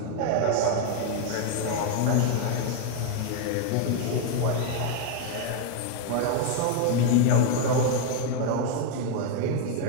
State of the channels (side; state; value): both; different; correlation 0.00